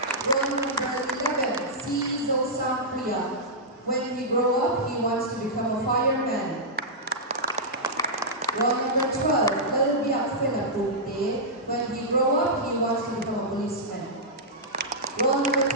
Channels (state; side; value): normal; both; correlation -0.11